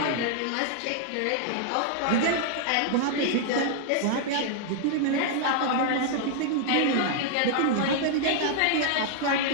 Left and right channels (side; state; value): both; different; correlation 0.00